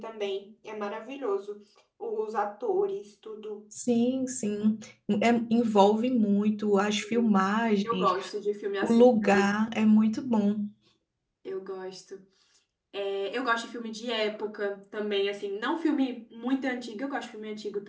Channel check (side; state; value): both; identical; correlation 1.00